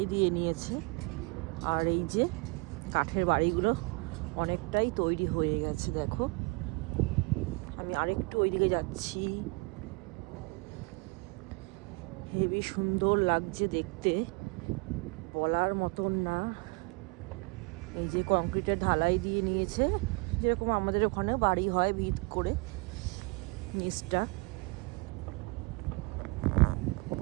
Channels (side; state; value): left; quieter; 28.2 dB